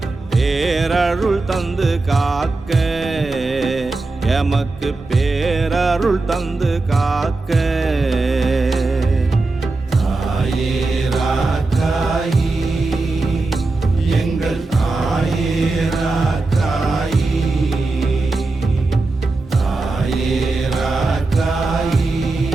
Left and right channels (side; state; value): left; quieter; 3.4 dB